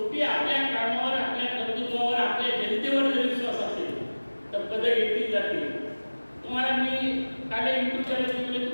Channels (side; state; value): both; inverted; correlation -1.00